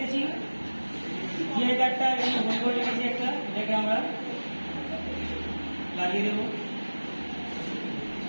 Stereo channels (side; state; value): both; inverted; correlation -1.00